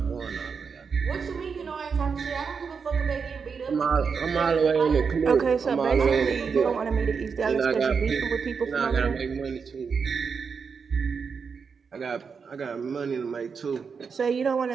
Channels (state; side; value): quieter; left; 5.8 dB